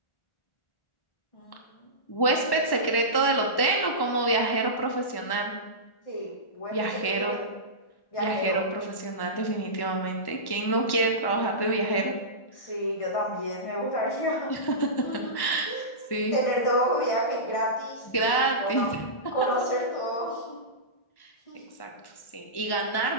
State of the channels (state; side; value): late; right; 1.1 ms